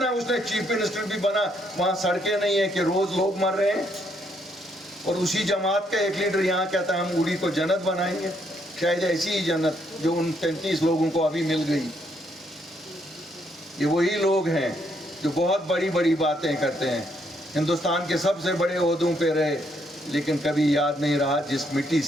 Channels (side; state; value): both; normal; correlation 0.73